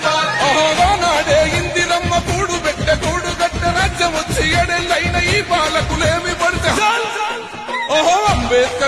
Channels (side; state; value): both; identical; correlation 1.00